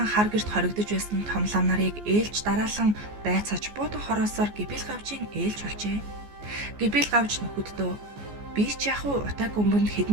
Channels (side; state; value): left; late; 14 ms